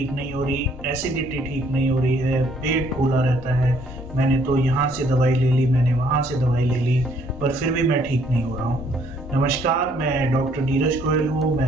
नहीं हो रही, एसिडिटी ठीक नहीं हो रही है, पेट फूला रहता है, मैंने तो यहाँ से दवाई ले ली, मैंने वहाँ से दवाई ले ली, पर फिर भी मैं ठीक नहीं हो रहा हूँ। नमस्कार, मैं डॉक्टर नीरज गोयल हूँ,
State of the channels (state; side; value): normal; both; correlation 0.64